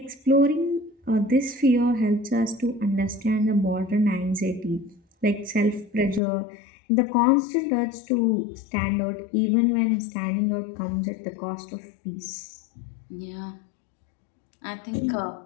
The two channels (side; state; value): right; drops out; at 6.2 s